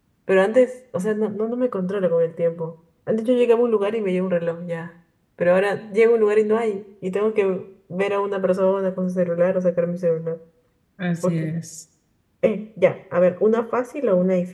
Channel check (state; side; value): identical; both; correlation 1.00